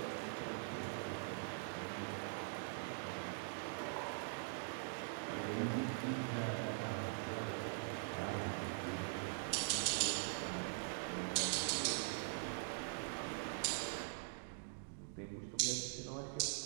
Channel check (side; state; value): left; silent; digital silence